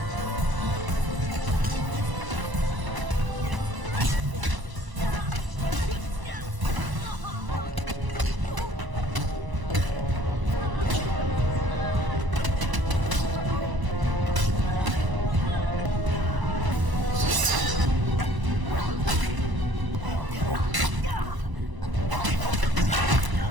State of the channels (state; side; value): late; left; 1.0 ms